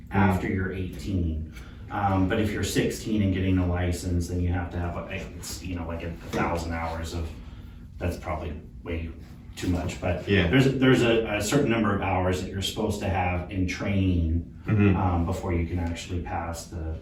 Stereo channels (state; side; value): identical; both; correlation 1.00